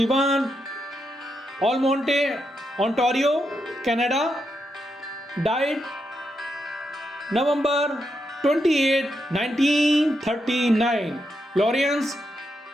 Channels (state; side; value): normal; both; correlation 0.83